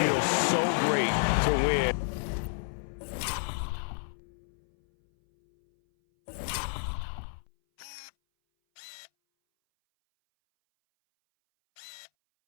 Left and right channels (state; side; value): silent; right; 57 dB below the other